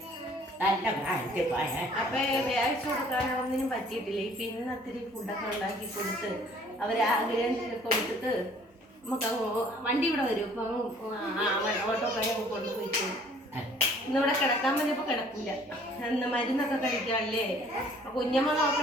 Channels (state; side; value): normal; both; correlation 0.56